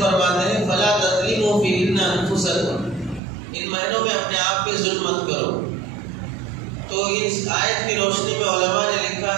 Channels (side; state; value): left; drops out; at 3.2 s